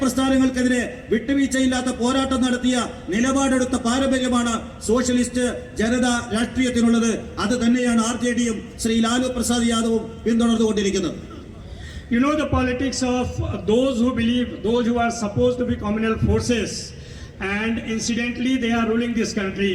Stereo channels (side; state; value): both; identical; correlation 1.00